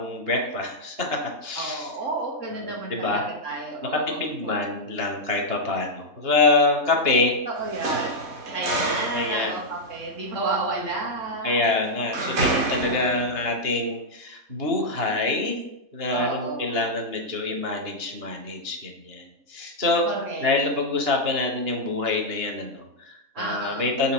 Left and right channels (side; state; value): left; late; 2.9 ms